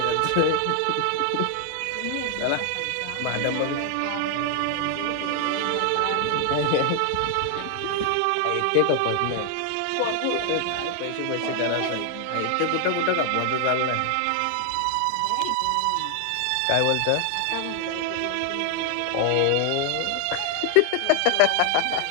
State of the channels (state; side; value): different; both; correlation 0.00